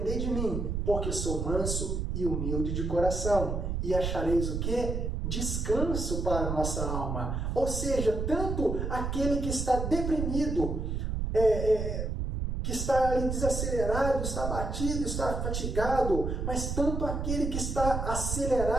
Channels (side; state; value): right; noise; rumble, 2 dB below the sound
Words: de mim, porque sou manso e humilde de coração, e achareis o quê? Descanso para a nossa alma. Ou seja, tanto aquele que está deprimido, que está ali desacelerado, está abatido, está fatigado, mas tanto aquele que está